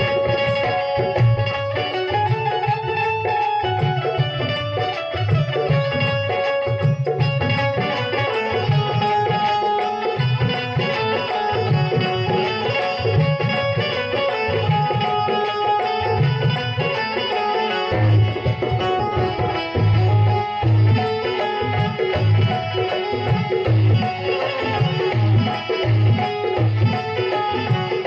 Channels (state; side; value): identical; both; correlation 1.00